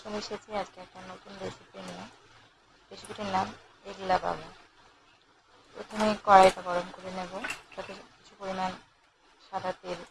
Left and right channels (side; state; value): both; identical; correlation 1.00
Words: এসেছি আজকে একটা নতুন রেসিপি নিয়ে। রেসিপিটির নাম এগলা বাবা। প্রথমে কড়াইটা গরম করে নেব, তাতে কিছু পরিমাণ সাদা তেল